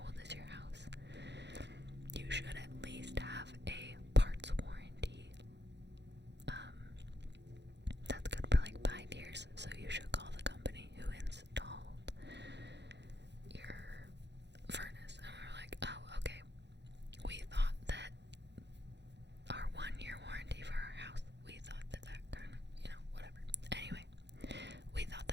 old is your house? You should at least have a parts warranty. That's good for like 5 years, so you should call the company who installed your furnace. And we were like, oh, okay. We thought that our 1-year warranty for our house, we thought that kind of, whatever. Anyway, we thought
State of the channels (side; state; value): left; late; 0.50 ms